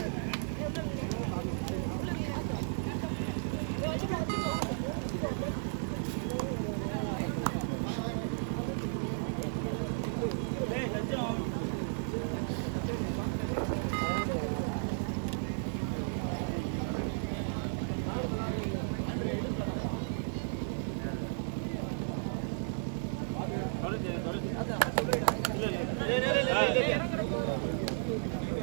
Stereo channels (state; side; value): silent; left; digital silence